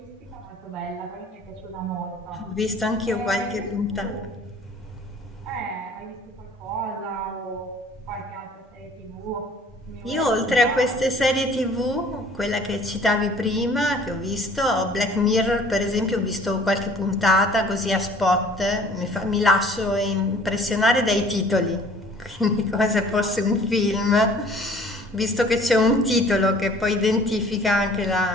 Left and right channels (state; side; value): normal; both; correlation 0.52